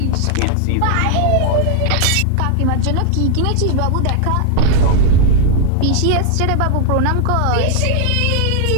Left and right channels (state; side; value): different; both; correlation -0.01